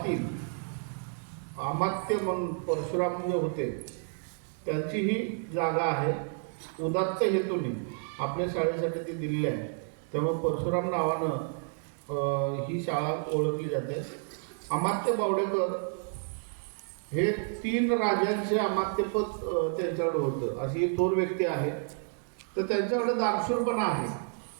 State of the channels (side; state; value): left; silent; 58 dB below the other